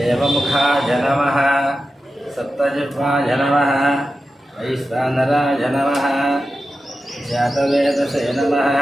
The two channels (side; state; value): both; normal; correlation 0.92